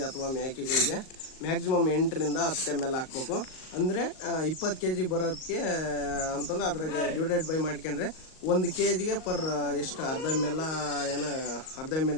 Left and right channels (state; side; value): late; right; 38 ms